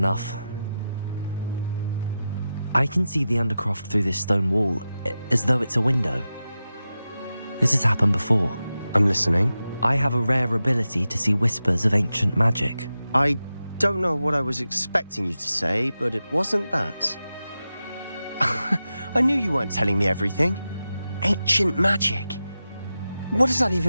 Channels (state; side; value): inverted; both; correlation -0.92